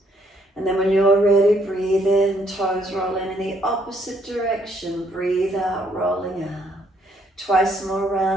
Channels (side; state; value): both; normal; correlation 0.69